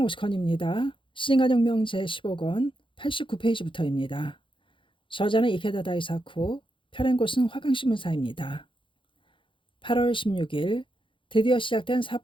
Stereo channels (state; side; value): late; right; 0.25 ms